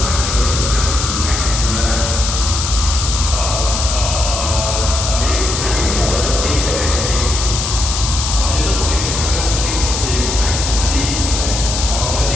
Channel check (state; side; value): noise; left; hiss, 3 dB below the sound